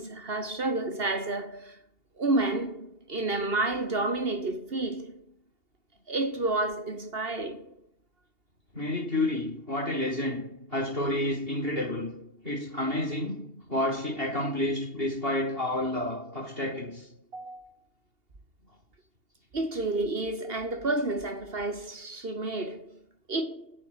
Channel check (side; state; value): left; late; 2.8 ms